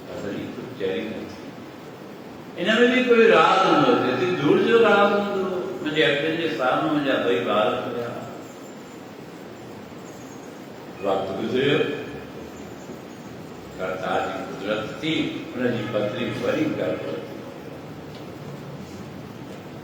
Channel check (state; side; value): identical; both; correlation 1.00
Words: पत्नी कुझु चरी न थी इनमें भी कोई राज हूंदो जेतिरी दूर जो राज हूंदो मुंहिंजे अखियुनि जे साम्हूं मुंहिंजा ॿई ॿार हुया वक़्तु गुज़रियो करतार जी कुदरत थी उनजी पत्नी